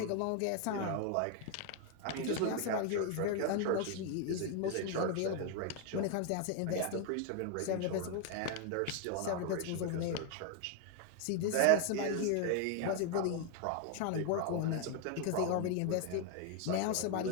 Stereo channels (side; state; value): both; different; correlation 0.01